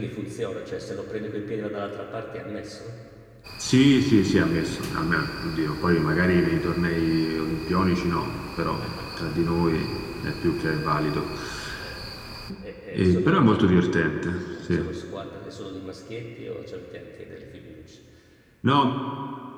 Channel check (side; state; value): both; identical; correlation 1.00